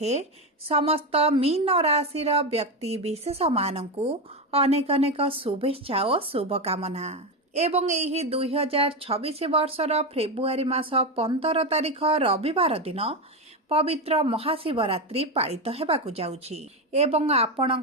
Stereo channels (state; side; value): normal; both; correlation 0.13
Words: समस्त मीन राशि व्यक्ति विशेष मानू अनेक अनेक शुभेच्छा और शुभकामना एवं यही 2026 वर्षर फेब्रुआरी मास 15 तारिख रविवार दिन पवित्र महाशिवरात्रि पालित हेबाकु जाउछि एवं